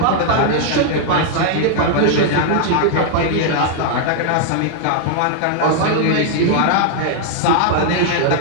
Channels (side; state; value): both; different; correlation 0.00